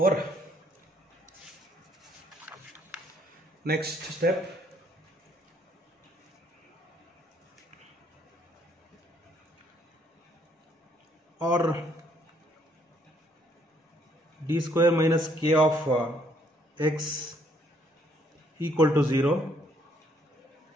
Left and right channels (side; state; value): both; normal; correlation 0.68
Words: next step, or d square minus k of x equal to 0